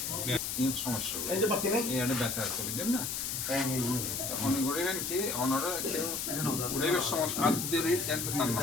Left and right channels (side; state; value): left; noise; hiss, 2 dB below the sound